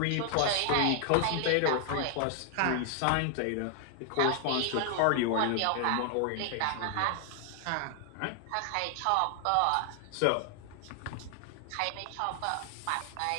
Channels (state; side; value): different; both; correlation 0.00